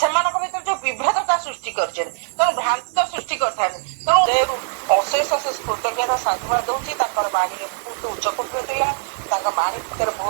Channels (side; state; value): left; silent; digital silence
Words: ଭିତରେ ଯୋଉ ବିଭେଦତା ସୃଷ୍ଟି କରିଛନ୍ତି, ତେଣୁ ଭ୍ରାନ୍ତ ସୃଷ୍ଟି କରିଥାନ୍ତି। ତେଣୁ ଅଶେଷ ଅଶେଷ କୃତଜ୍ଞତା ସାଧୁବାଦ ଦଉଛି। ତାଙ୍କର ବାଣୀରେ ବହୁତ ଉଚ୍ଚକୋଟୀର ଥିଲା, ତାଙ୍କ ବାଣୀ ଭିତରେ